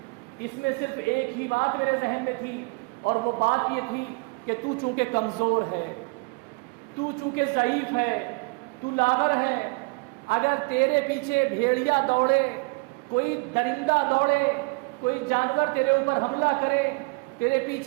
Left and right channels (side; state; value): left; quieter; 30.8 dB